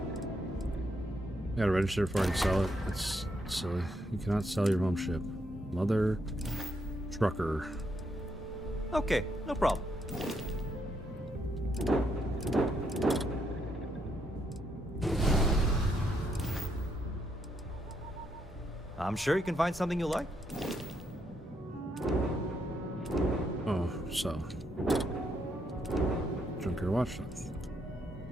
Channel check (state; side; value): normal; both; correlation 0.77